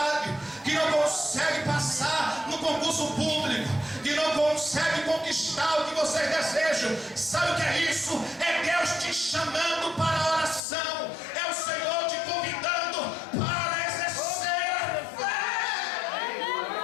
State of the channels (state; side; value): drops out; right; at 10.6 s